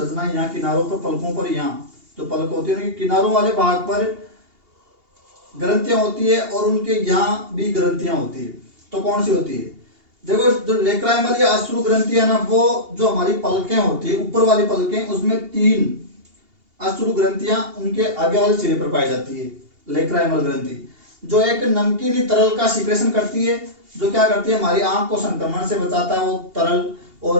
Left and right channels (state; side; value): late; left; 2.8 ms